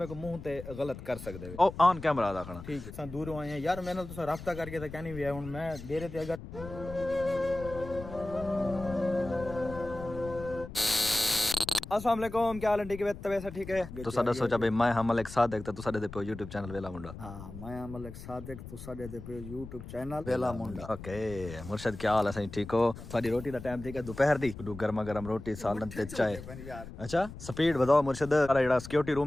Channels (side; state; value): left; noise; rumble, 12 dB below the sound